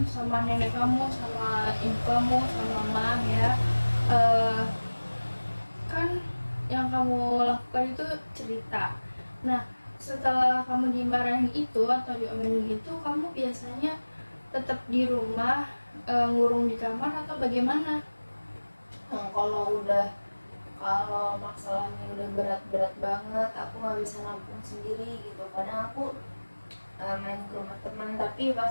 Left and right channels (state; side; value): inverted; both; correlation -1.00